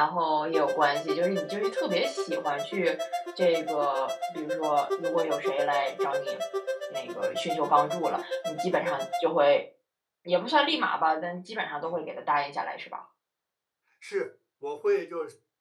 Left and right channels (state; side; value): identical; both; correlation 1.00